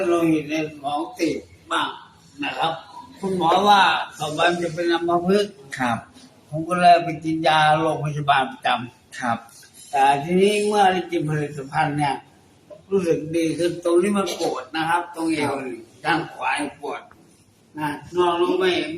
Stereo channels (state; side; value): identical; both; correlation 1.00